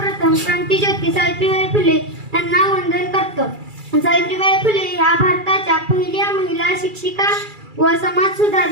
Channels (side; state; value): left; late; 2.3 ms